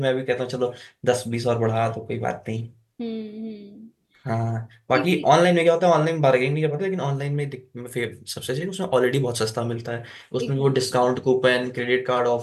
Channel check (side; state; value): both; identical; correlation 1.00